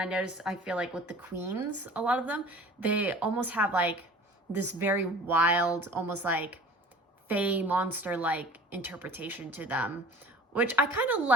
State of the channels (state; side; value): normal; both; correlation 0.43